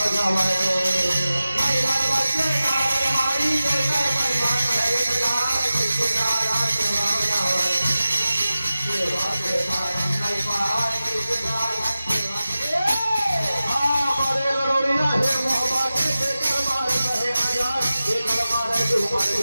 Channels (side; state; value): both; inverted; correlation -0.95